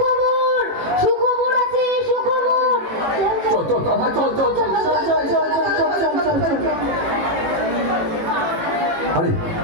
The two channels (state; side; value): late; left; 18 ms